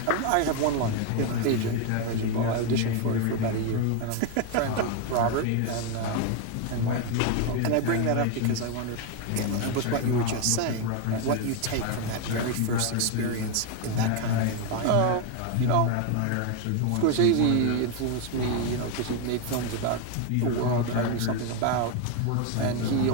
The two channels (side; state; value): both; different; correlation 0.01